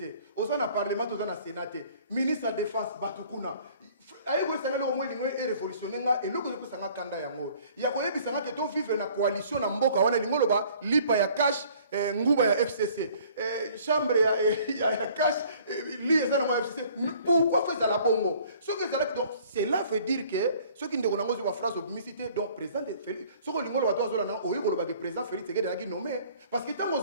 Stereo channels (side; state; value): both; inverted; correlation -0.54